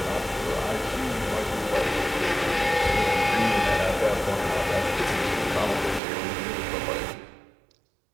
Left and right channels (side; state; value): left; drops out; at 6.0 s